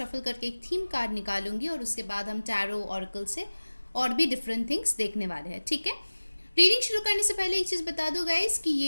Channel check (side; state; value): both; inverted; correlation -1.00